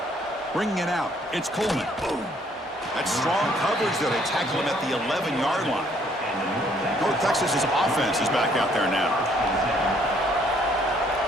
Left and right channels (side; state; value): both; normal; correlation 0.64